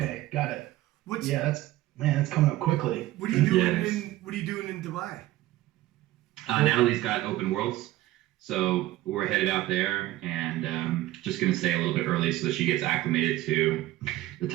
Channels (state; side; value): quieter; left; 15.9 dB